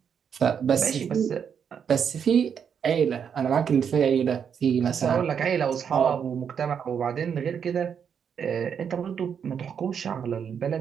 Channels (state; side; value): quieter; left; 7.5 dB